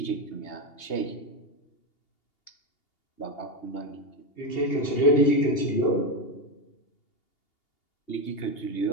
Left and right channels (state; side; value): late; right; 2.8 ms